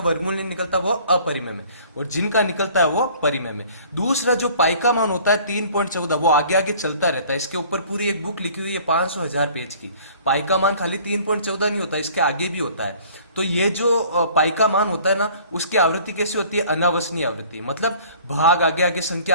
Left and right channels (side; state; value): both; inverted; correlation -0.51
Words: नहीं निकलता वो अपरिमेय में, और जिनका निकलता है वो परिमेय में। दूसरा जो पाई का मान होता है 3.14, वो आगे आगे चलता रहता है। इसके ऊपर पूरी एक बुक लिखी हुई है 500,000 पेज की। पाई का मान खाली 3.14 नहीं होता, इसके आगे भी होता है। तो ये जो पाई का मान होता है ना, उसकी आवृत्ति कैसी होती है? अनावसनीय आवृत्ति। मतलब भाग आगे आगे संख्या